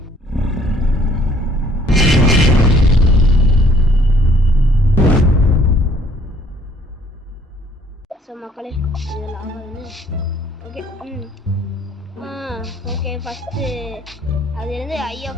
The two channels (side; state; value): both; normal; correlation 0.61